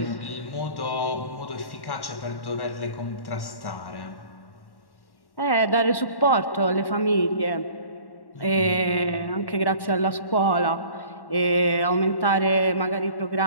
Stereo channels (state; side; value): late; right; 1.1 ms